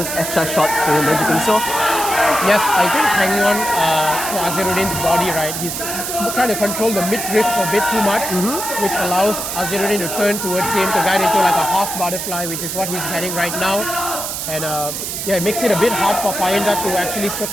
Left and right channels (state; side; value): noise; right; hiss, 4 dB below the sound